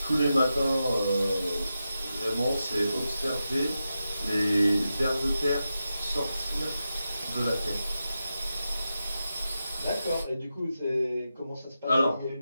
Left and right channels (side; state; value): both; inverted; correlation -0.90